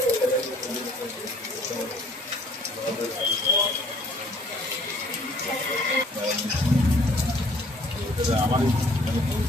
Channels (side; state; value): both; normal; correlation 0.59